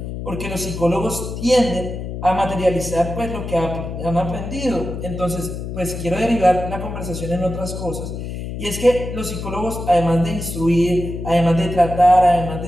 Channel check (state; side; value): noise; left; hum, 7 dB below the sound